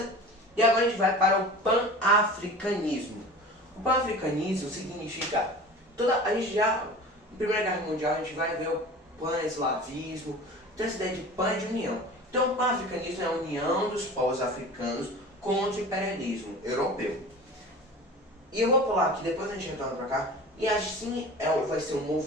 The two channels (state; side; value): normal; both; correlation 0.38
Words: E agora a gente vai para o pan-africanismo. O pan-africanismo significa, a gente já, na Primeira Guerra Mundial, a gente vai ver o pan-eslavismo, então essa ideia de pan é de união. Então o pan-africanismo é a união dos povos africanos contra o imperialismo europeu. E eu vou pular aqui, depois a gente retorna para cá. E assim vai ser um